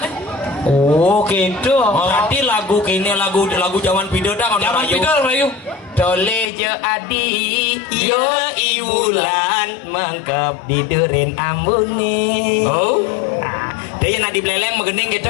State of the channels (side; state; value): right; drops out; at 6.5 s